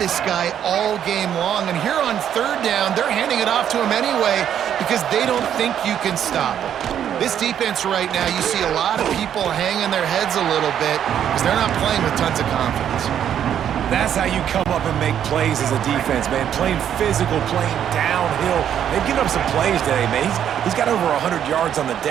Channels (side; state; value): left; quieter; 9.6 dB